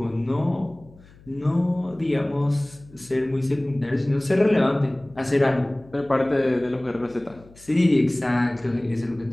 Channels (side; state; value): left; noise; hum, 25 dB below the sound